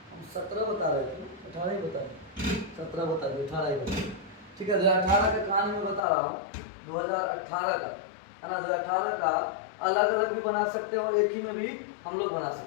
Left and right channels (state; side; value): drops out; right; at 6.0 s